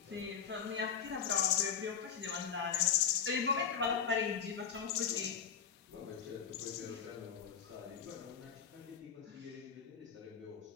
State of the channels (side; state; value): right; quieter; 7.5 dB